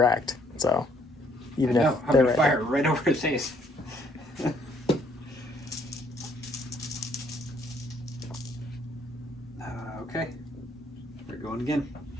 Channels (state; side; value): normal; both; correlation 0.66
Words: so even if No, I'm they're going to right fire right over his face. Okay. We're going again.